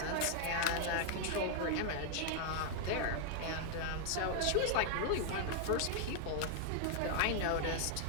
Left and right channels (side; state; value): both; different; correlation 0.00